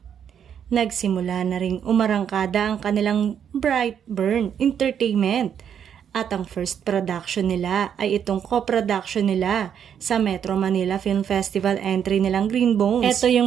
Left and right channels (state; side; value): quieter; left; 8.5 dB